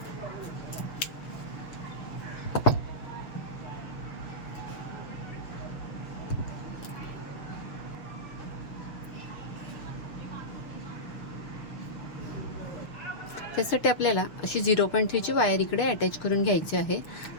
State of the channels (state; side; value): late; right; 6.5 ms